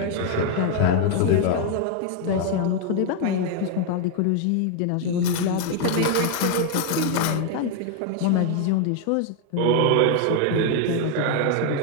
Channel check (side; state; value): both; different; correlation 0.00